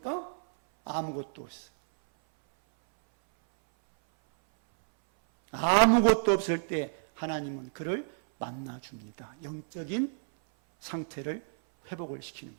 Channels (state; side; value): silent; left; 58 dB below the other